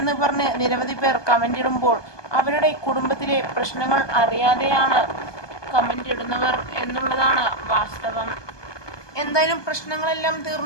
പറഞ്ഞ് നിരവധി പേർ കമന്റ് ഇടുമ്പോൾ അവരുടെ കുടുംബത്തിലെ പ്രശ്നങ്ങൾ അറിയാതെയാണ് കമന്റ് ഇടുന്നവർ എന്നുള്ളതാണ് വാസ്തവം. എന്തായാലും പ്രശ്നങ്ങളെല്ലാം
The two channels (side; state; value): right; late; 1.2 ms